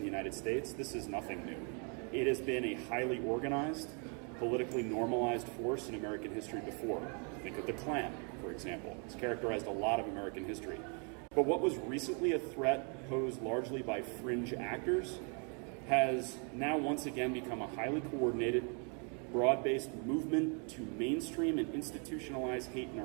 United States, this is nothing new. It has been a highly organized, politically normalized force in American history before. Think of the Klan, for example. It's characterized a lot of American history. But what was recently a threat posed largely by fringe actors has now once again become a highly coordinated, broad-based movement to mainstream and institutionalize hate in our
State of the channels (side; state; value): left; quieter; 37.8 dB